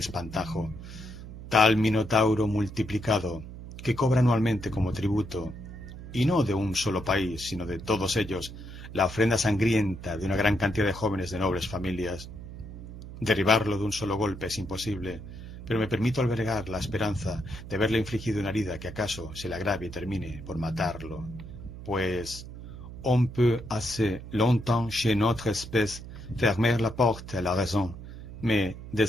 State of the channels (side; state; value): right; noise; hum, 12 dB below the sound